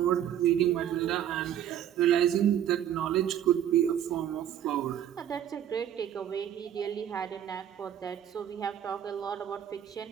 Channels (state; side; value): quieter; left; 10.3 dB